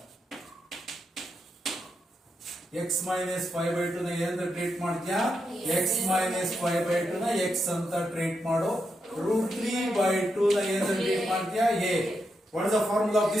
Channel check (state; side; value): normal; both; correlation 0.84